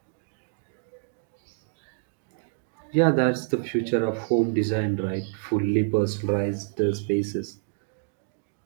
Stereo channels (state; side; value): silent; left; digital silence